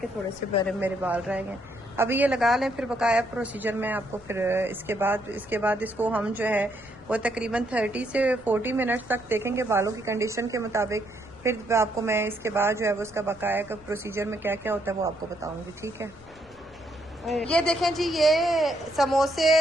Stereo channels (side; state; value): left; noise; rumble, 23 dB below the sound